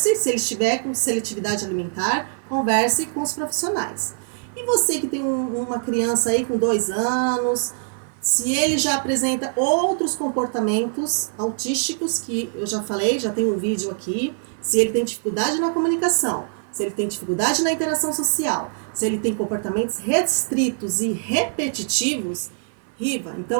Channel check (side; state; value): left; silent; 55 dB below the other